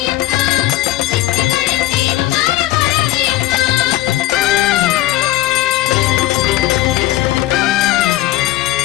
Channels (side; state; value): right; quieter; 16.0 dB